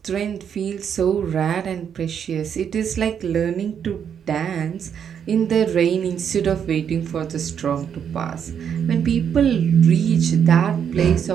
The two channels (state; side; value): quieter; left; 8.1 dB